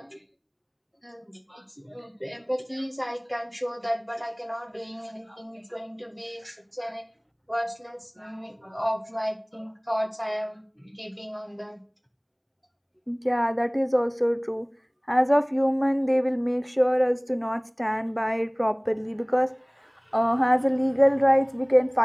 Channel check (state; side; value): identical; both; correlation 1.00